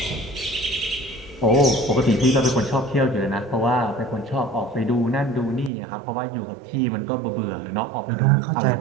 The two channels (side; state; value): left; drops out; at 5.7 s